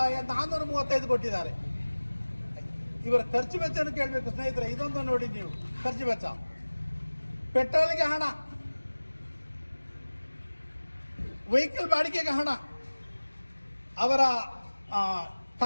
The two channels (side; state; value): both; inverted; correlation -1.00